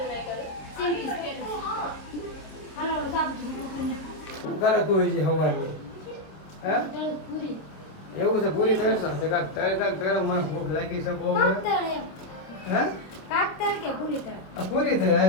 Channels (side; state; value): right; late; 26 ms